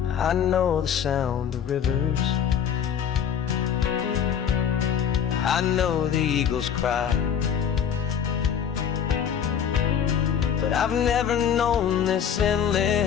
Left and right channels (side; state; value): right; quieter; 8.2 dB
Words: I know the sound of rivers, I know the eagles cry, but I've never known this